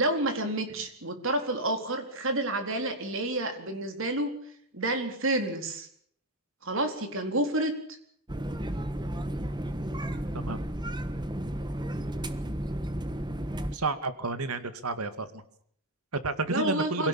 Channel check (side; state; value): both; normal; correlation 0.09